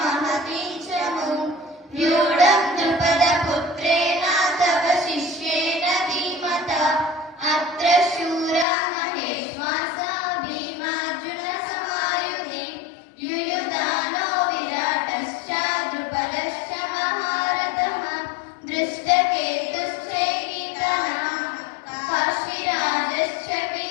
చ వ్యూఢం ద్రుపదపుత్రేణ తవ శిష్యేణ ధీమతా అత్ర శూరా మహేశ్వాసా భీమార్జున సమాయుధి యుయుధానో విరాటశ్చ ద్రుపదశ్చ మహారథః దృష్టకేతుశ్చైకీతనః కాశీరాజశ్చ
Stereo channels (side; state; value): right; drops out; at 8.7 s